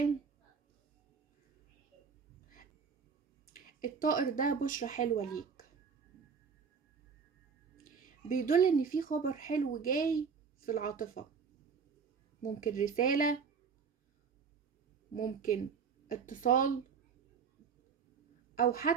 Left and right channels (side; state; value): left; quieter; 6.0 dB